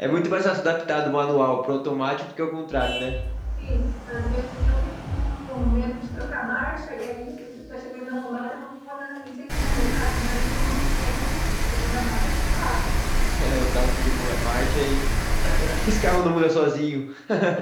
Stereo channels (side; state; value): both; identical; correlation 1.00